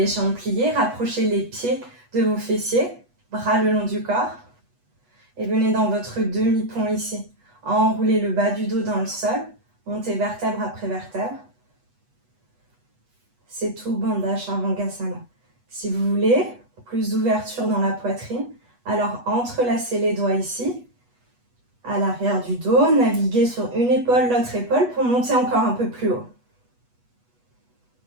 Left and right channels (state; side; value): late; left; 8.2 ms